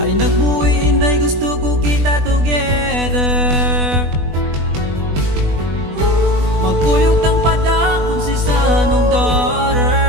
Ay nagbuwi inday, gusto ko kita together. Magkuyog tang padakon si sanong daughter.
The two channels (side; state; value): left; late; 20 ms